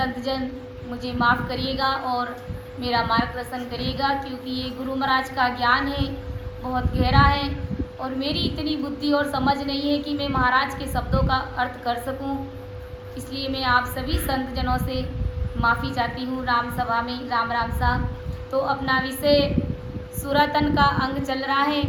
मुझे माफ़ करिएगा और मेरा मार्गदर्शन करिएगा, क्योंकि ये गुरु महाराज का ज्ञान है, बहुत गहरा है और मेरी इतनी बुद्धि और समझ नहीं है कि मैं महाराज के शब्दों का अर्थ कर सकूं। इसलिए मैं आप सभी संत जनों से माफ़ी चाहती हूँ। राम सभा में राम राम सा। तो अपना विषय सुरातन का अंग चल रहा है।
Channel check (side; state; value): both; identical; correlation 1.00